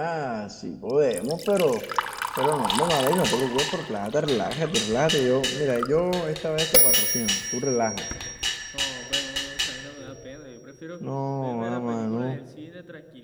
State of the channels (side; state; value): both; identical; correlation 1.00